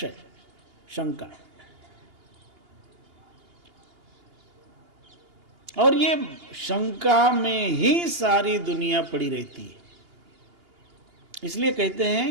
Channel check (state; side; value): late; left; 2.8 ms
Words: शंका। और ये शंका में ही सारी दुनिया पड़ी रहती है। इसलिए कहते